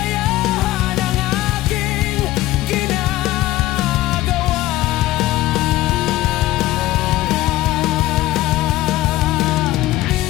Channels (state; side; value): quieter; right; 16.5 dB